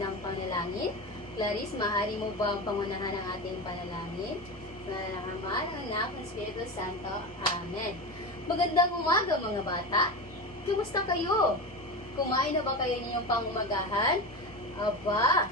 panalangin. Clarice, maaari mo ba ang pangunahan ng ating panalangin? Sa ng Ama, ng Anak, ng Espiritu Santo. Amen. Magandang umaga mga bata. Kumusta kayo? Kumain na ba kayo ninyong pangumagahan? Aba,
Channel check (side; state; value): both; normal; correlation 0.23